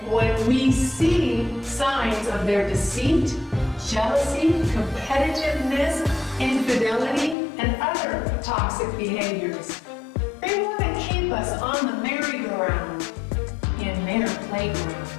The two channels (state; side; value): drops out; right; at 7.4 s